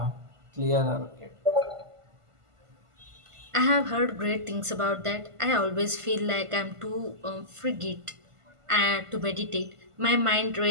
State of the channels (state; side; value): late; left; 1.5 ms